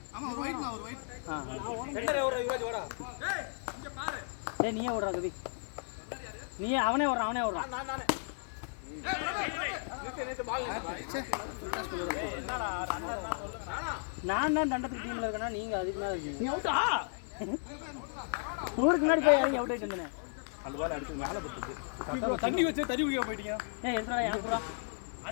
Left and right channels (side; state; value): right; silent; 55 dB below the other